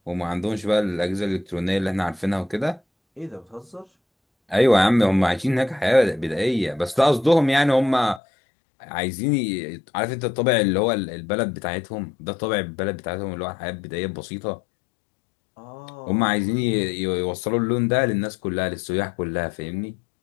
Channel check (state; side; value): drops out; right; at 8.2 s